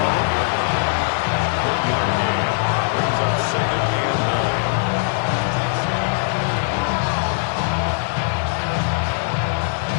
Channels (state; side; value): silent; right; 65 dB below the other